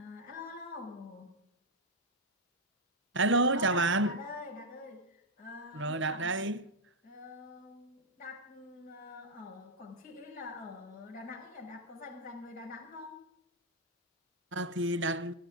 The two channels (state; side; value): normal; both; correlation -0.01